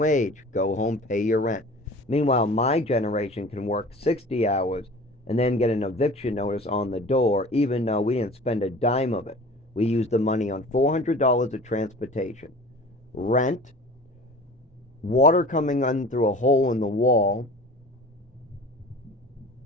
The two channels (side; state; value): both; normal; correlation 0.41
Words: go home, pay your rent. Meanwhile, my generation can work 60 hours and then get an eviction notice on the door, even though we didn't spend a dime of it. We used the money on $400 of transportation, rent, water coming in through a hole in the wall,